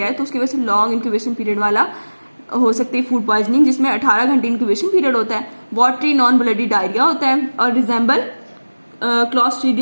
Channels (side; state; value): both; inverted; correlation -1.00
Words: है, तो उसकी वजह से लॉन्ग इंक्यूबेशन पीरियड वाला हो सकती है फूड पॉइजनिंग, जिसमें 18 घंटे इंक्यूबेशन पीरियड होता है, वॉटरी नॉन ब्लडी डायरिया होता है और रिजेंबल